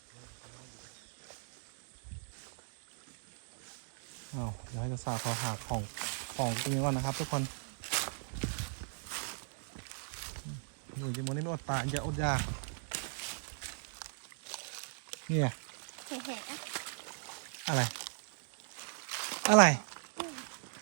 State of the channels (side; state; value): left; silent; digital silence